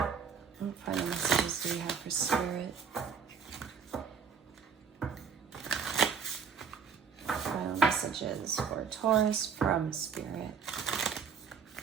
What final messages do we have for Spirit? Final messages for Taurus from Spirit.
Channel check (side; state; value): left; quieter; 6.4 dB